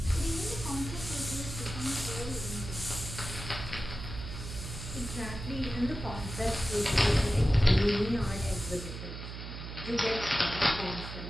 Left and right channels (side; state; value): right; noise; hum, 9 dB below the sound